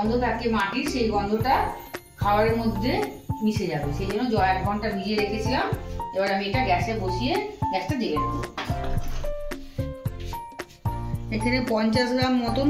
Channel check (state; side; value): identical; both; correlation 1.00